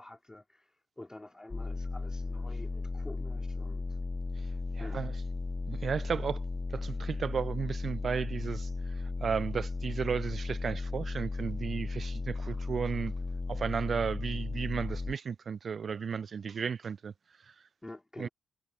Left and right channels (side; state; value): both; normal; correlation 0.88